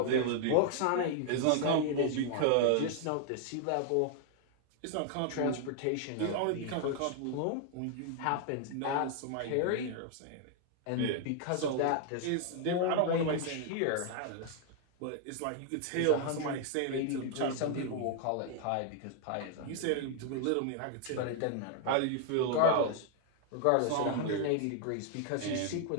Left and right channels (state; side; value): different; both; correlation 0.00